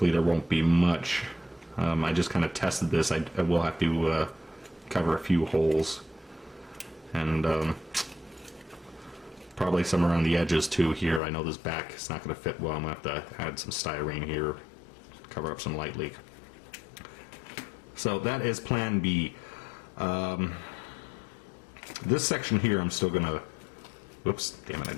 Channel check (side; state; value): right; drops out; at 11.2 s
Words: there won't be much. I just kind of tested this. I will have to cover a few holes, and probably some around the edges too here. I know this back is not going to fit well. I'm going to have to add some styrene here, cover up some light leak. So that is plan B. This section here I'm still going to, whoops, damn it, I